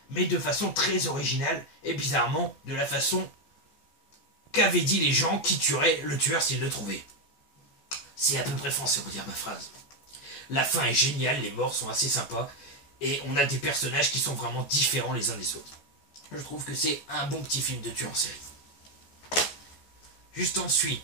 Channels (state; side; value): late; right; 14 ms